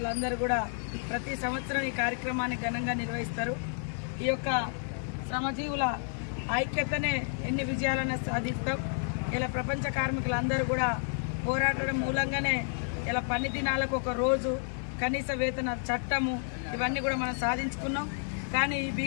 కూడా ప్రతి సంవత్సరం ఈ కార్యక్రమాన్ని ఘనంగా నిర్వహిస్తారు. ఈ యొక్క శ్రమజీవుల ఐక్యతనే ఎన్ని విజయాలను సాధిస్తాం. ఇలా ప్రపంచ కార్మికులందరూ కూడా పోరాటం మూలంగానే ఇలా పని దినాలకు ఒక రోజు, కనీస వేతన చట్టము, ఇవన్నీ కూడా మనం సాధించుకున్నాం. కానీ ఈ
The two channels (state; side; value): silent; right; 57 dB below the other